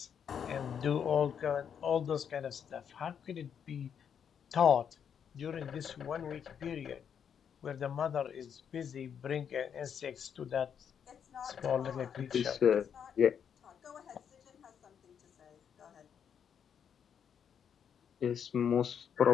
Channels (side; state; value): right; quieter; 7.9 dB